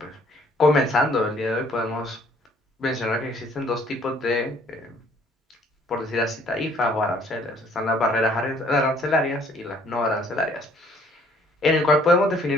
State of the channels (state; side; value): normal; both; correlation 0.60